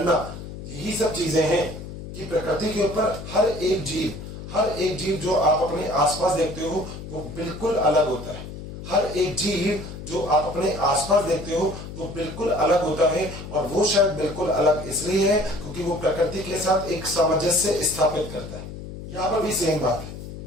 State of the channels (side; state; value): left; noise; hum, 11 dB below the sound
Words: यही सब चीजें हैं कि प्रकृति के ऊपर हर एक जीव जो आप अपने आसपास देखते हो वो बिल्कुल अलग होता है। हर एक जीव जो आप अपने आसपास देखते हो वो बिल्कुल अलग होता है, और वो शायद बिल्कुल अलग इसलिए है क्योंकि वो प्रकृति के साथ एक सामंजस्य स्थापित करता है। यहाँ पर भी सेम बात है।